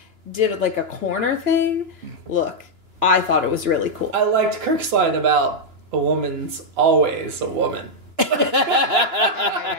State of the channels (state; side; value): late; left; 2.9 ms